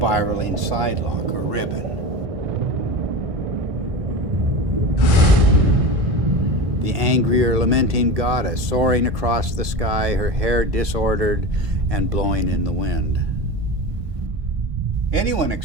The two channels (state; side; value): late; left; 1.6 ms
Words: sidelock or ribbon. The angry or lamenting goddess soaring across the sky, her hair disordered and blowing in the wind. Anyone